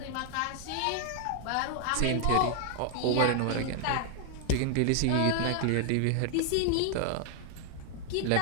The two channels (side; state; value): both; different; correlation 0.00